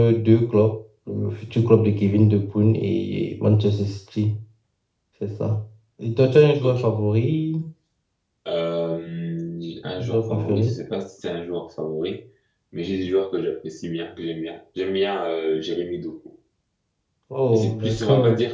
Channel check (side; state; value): both; identical; correlation 1.00